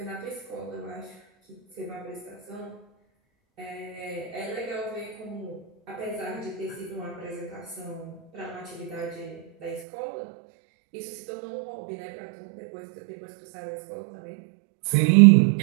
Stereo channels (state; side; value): drops out; left; at 9.9 s